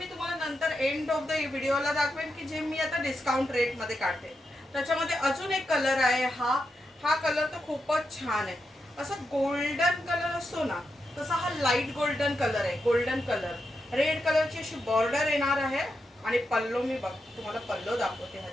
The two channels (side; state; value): both; normal; correlation 0.86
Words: तुम्हाला नंतर एंड ऑफ द व्हिडिओला दाखवेन की जे मी आता डिस्काउंट रेटमध्ये काढते. त्याच्यामध्ये अजून एक कलर आहे. हा कलर तर खूपच छान आहे. असं गोल्डन कलर असतो ना, तसा हा लाईट गोल्डन कलर आहे. गोल्डन कलर, रेड कलरची अशी बॉर्डर येणार आहे आणि पल्लो मी तुम्हाला पल्लो दाखवते